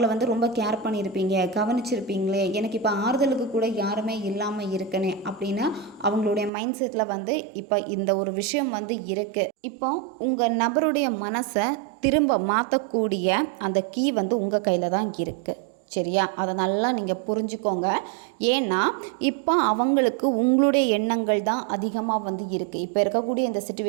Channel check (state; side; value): drops out; left; at 6.5 s